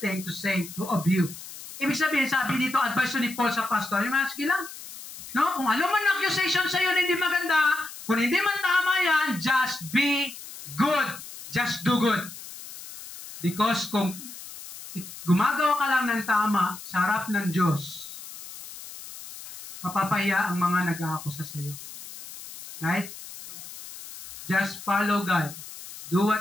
to say of you. Ibig sabihin, sabi dito, advice ni Paul sa pastor, sige lang, kung ano man accusation sa iyo na hindi maganda, kung hindi man tama yan, just be good. Just do good. Because kung gumagawa ka lang ng tama sa harap ng Diyos, mapapahiya ang mga nag-aakusa sa iyo. Right? Just follow God. Do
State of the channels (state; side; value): noise; left; hiss, 14 dB below the sound